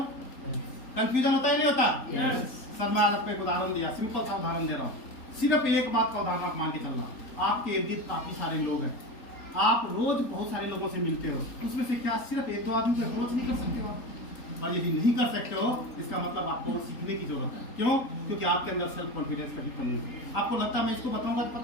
कंफ्यूजन होता है नहीं होता? सर मैं आज आपको एक उदाहरण दिया, सिंपल सा उदाहरण दे रहा हूँ। सिर्फ एक बात का उदाहरण आप मान के चलना। आपके इर्द गिर्द काफी सारे लोग हैं, आप रोज बहुत सारे लोगों से मिलते हो, उसमें से क्या सिर्फ 1-2 आदमी को अप्रोच नहीं कर सकते हो? और यदि नहीं कर सकते हो इसका मतलब आपको सीखने की जरूरत है। क्यों? क्योंकि आपके अंदर सेल्फ कॉन्फिडेंस कभी कमी है। आपको लगता है मैं इसको बताऊंगा तो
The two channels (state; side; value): late; right; 3.8 ms